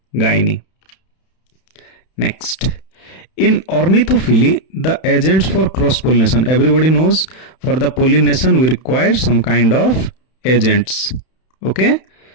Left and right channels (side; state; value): right; late; 31 ms